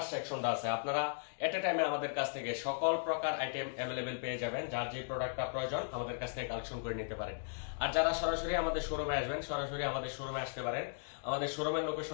সেকশনটা আছে। আপনারা এট এ টাইমে আমাদের কাছ থেকে সকল প্রকার আইটেম অ্যাভেলেবেল পেয়ে যাবেন। যার যে প্রোডাক্টটা প্রয়োজন আমাদের কাছ থেকে কালেকশন করে নিতে পারেন। আর যারা সরাসরি আমাদের শোরুমে আসবেন, সরাসরি আমাদের শোরুমে আসতে পারেন। আমাদের শোরুমের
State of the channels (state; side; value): silent; right; digital silence